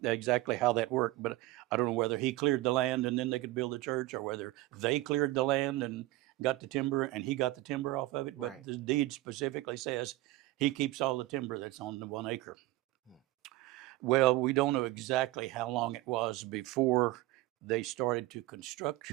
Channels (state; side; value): quieter; left; 18.3 dB